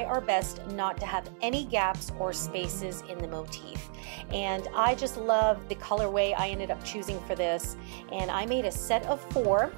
our best not to have any gaps or spaces in the motif. And I just love the colorway I ended up choosing for this. And I made a set of 4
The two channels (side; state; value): left; silent; 57 dB below the other